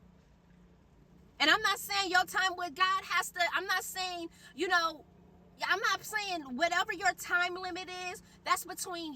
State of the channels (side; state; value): both; identical; correlation 1.00